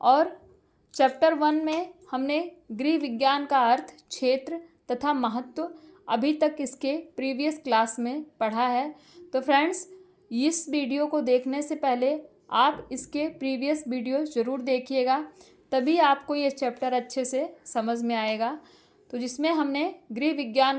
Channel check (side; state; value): both; identical; correlation 1.00